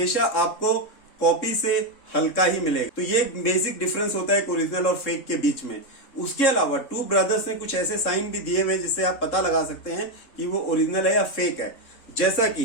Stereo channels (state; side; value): late; right; 3.6 ms